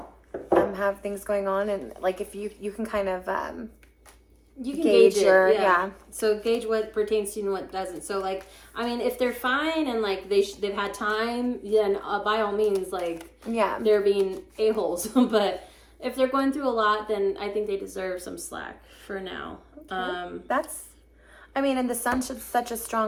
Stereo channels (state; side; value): identical; both; correlation 1.00